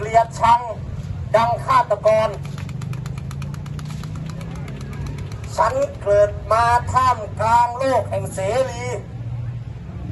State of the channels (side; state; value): both; identical; correlation 1.00